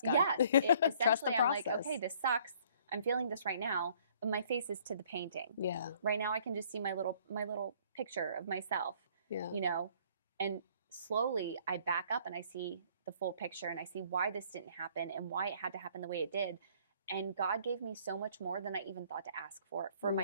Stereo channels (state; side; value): inverted; both; correlation -0.59